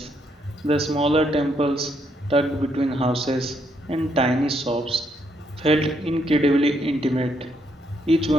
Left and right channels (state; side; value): normal; both; correlation 0.75